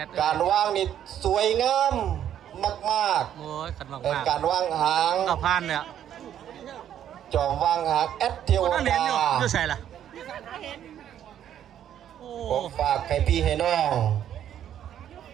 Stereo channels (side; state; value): left; quieter; 10.3 dB